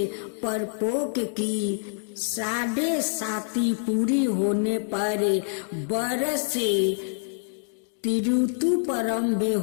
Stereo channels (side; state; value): right; silent; digital silence